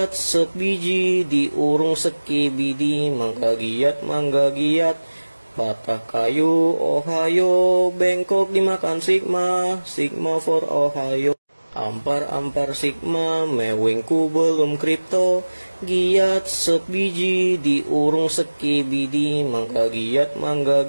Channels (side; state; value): both; inverted; correlation -1.00